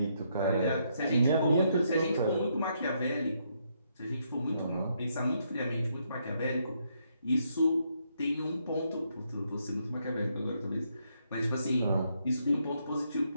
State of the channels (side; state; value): both; inverted; correlation -0.76